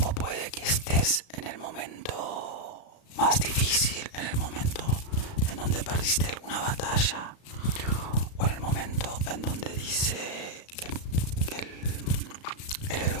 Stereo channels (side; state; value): right; late; 35 ms